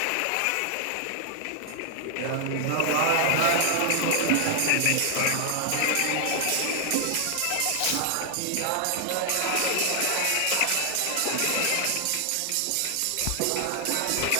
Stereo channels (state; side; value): different; both; correlation 0.00